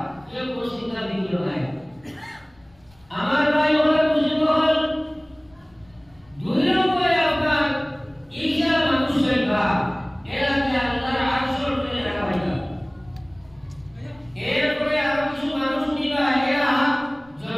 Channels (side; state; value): left; noise; rumble, 30 dB below the sound